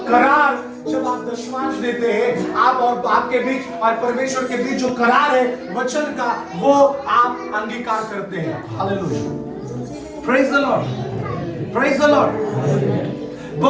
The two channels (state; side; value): identical; both; correlation 1.00